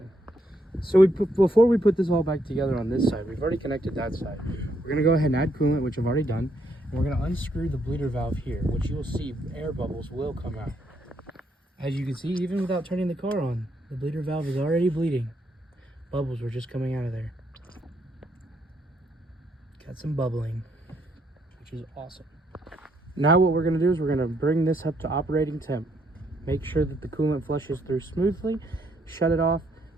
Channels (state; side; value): normal; both; correlation 0.74